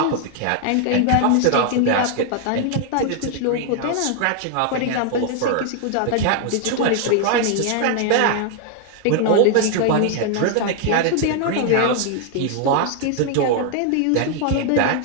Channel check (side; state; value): both; different; correlation 0.00